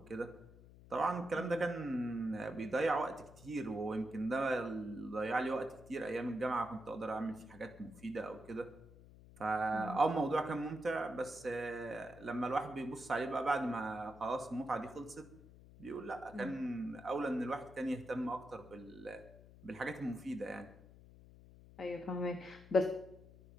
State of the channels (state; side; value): noise; left; hum, 20 dB below the sound